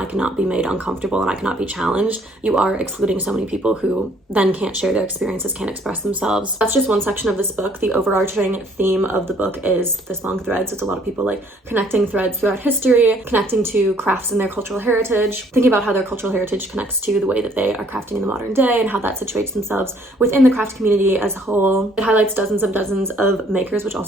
cannot be made uncomfortable and I cannot be challenged, you are excluding so many people who then can't share their experiences, can't express themselves. That's just one section of this book. The overarching theme of the book is this long thread, so it's a lot of people like connecting threads throughout history, connecting to crafts and their cultural heritage, thinking about how their cultural heritage connects to the way that they are crafting in the modern day and how that situates themselves within the craft community as a whole. It highlights dozens of makers, which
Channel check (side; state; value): both; normal; correlation 0.62